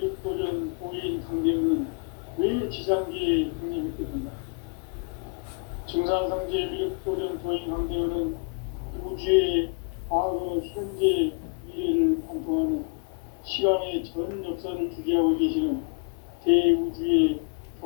도인 강제우는 왜 지상계에 강림했겠느냐? 증산상제의 비륵도전 도인 강제우는 우주의 과거, 현재, 미래를 관통하는 시간의 전 역사를 주재하고 계시는 대우주의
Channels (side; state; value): right; quieter; 35.3 dB